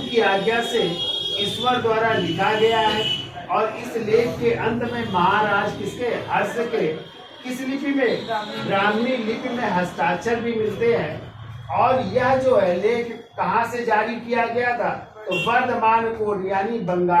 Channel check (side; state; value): both; identical; correlation 1.00